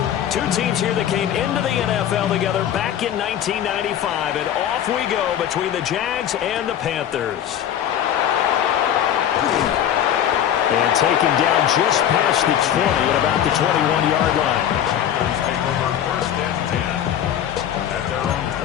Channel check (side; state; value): right; quieter; 10.2 dB